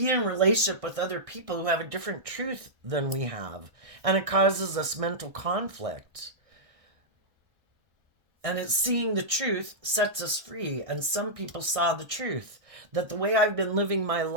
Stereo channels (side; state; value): left; late; 1.6 ms